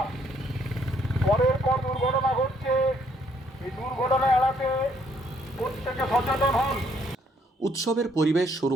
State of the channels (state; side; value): normal; both; correlation 0.68